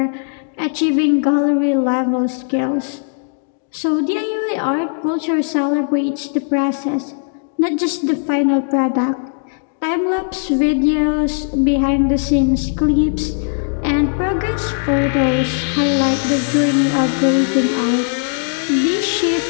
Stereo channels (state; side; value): silent; right; 60 dB below the other